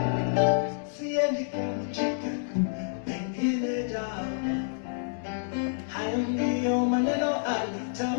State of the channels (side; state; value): right; silent; digital silence